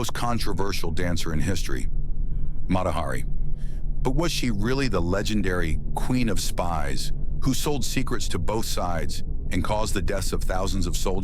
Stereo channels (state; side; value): identical; both; correlation 1.00